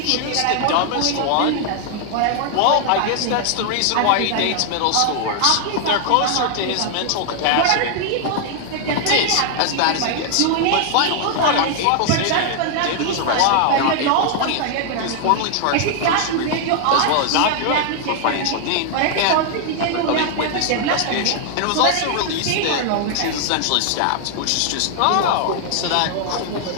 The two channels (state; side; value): different; both; correlation 0.00